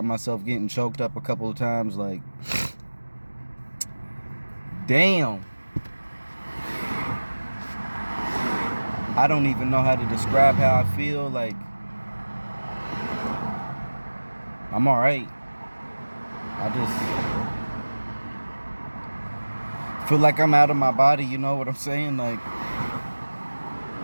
myself getting choked up a couple of times, like, damn. I don't even know how to describe how I feel. Like, I'm all right. I just feel like I'm out of my body, you know what I'm saying? Like,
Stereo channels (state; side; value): inverted; both; correlation -1.00